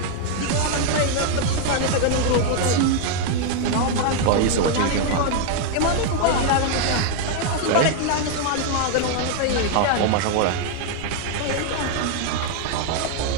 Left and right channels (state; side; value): different; both; correlation 0.00